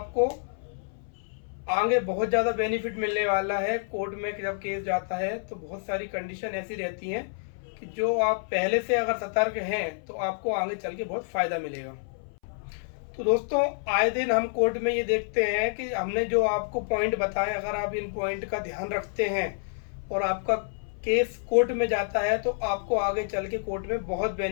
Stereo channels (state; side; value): silent; right; 59 dB below the other